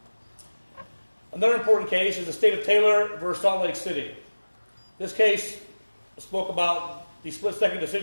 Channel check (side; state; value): both; inverted; correlation -1.00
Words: Another important case is the state of Taylor versus Salt Lake City. This case spoke about the split-second